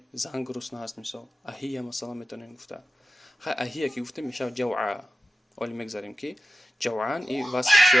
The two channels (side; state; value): both; normal; correlation 0.93